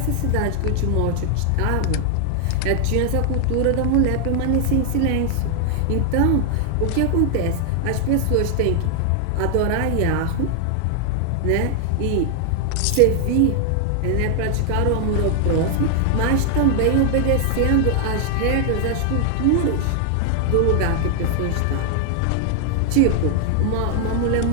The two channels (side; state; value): both; different; correlation 0.00